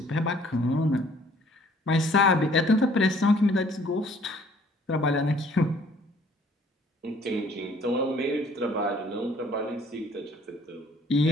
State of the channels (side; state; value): both; normal; correlation 0.59